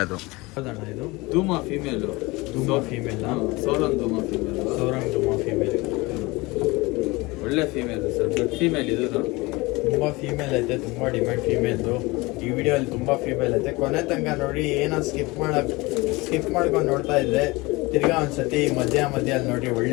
ಅದು. ಹೌದಣ್ಣ ಇದು? ಧೂಮ ಫೀಮೇಲು. ಫೀಮೇಲ್. ಸೋರಂಗ್ ಧೂಮ ಫೀಮೇಲ್. ಒಳ್ಳೆ ಫೀಮೇಲ್ ಸರ್, ದೊಡ್ಡ ಫೀಮೇಲ್. ಇದು ತುಂಬ ಫೀಮೇಲ್ ಐತೆ, ತುಂಬ ಡಿಮ್ಯಾಂಡ್ ಫೀಮೇಲ್ದು. ಈ ವಿಡಿಯೋಲ್ಲಿ ತುಂಬ ಫೀಮೇಲ್ ಐತೆ. ಕೊನೆ ತನಕ ನೋಡಿ. ಏನೋ ಸ್ಕಿಪ್ ಮಾಡ್ಕೊಂಡು ನೋಡ್ತಾ ಇದ್ದರೆ ತಿರ್ಗಾ ಒಂದ್ಸತಿ ಮಧ್ಯ ಅಲ್ಲಿ ನೋಡಿ.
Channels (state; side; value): quieter; right; 23.0 dB